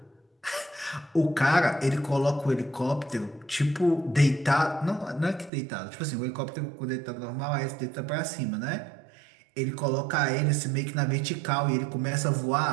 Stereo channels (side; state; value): left; drops out; at 5.5 s